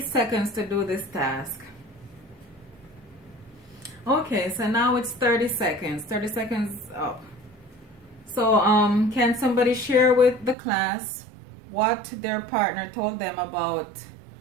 seconds to do this task. Okay, so now it's 30 seconds. 30 seconds up. So can somebody share with the class what their partner told them about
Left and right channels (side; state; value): left; drops out; at 10.6 s